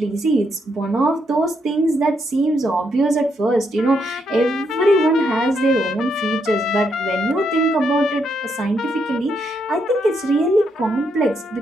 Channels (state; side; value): normal; both; correlation 0.77